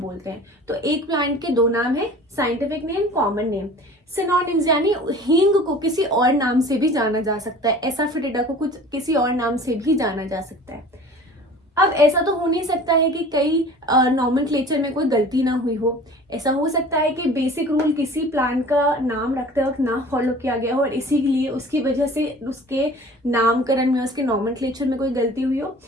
हैं। तो एक प्लांट के दो नाम है, scientific name, common name. Synonyms यानी हींग को किसी और नाम से भी जाना जा सकता है, एसाफेटिडा को कुछ किसी और नाम से भी जाना जा सकता है। अब ऐसा तो हो नहीं सकता है कि कई नॉमेनक्लेचर में कोई गलती ना हुई हो। ऐसा हो सकता है कि बेसिक रूल किसी प्लांट का नाम रखते वक्त ना फॉलो किया गया हो और इसीलिए उसकी वजह से उसके नामकरण में, उसके नॉमेनक्लेचर में कोई गलती हुई हो।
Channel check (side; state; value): both; normal; correlation 0.44